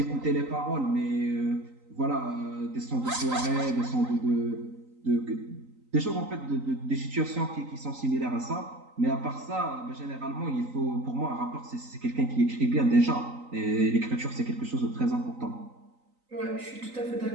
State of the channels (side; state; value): left; late; 3.9 ms